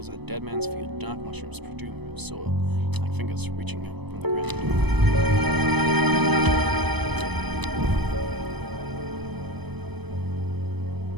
as Dead Man's Field. Dark mushrooms protrude from soil, like fingers reaching out from the ground.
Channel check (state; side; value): late; left; 0.99 ms